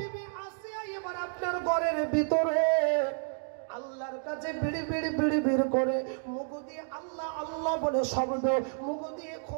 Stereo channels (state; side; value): silent; left; digital silence